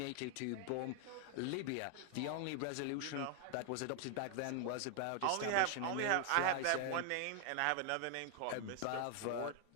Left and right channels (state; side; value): different; both; correlation 0.00